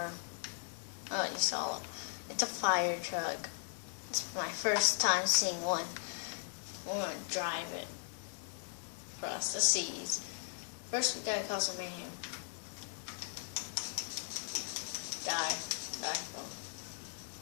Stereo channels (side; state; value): right; silent; digital silence